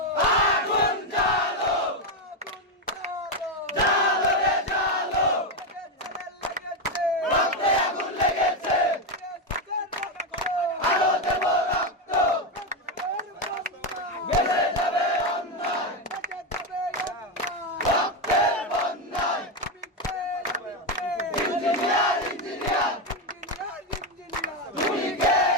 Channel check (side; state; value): both; normal; correlation 0.08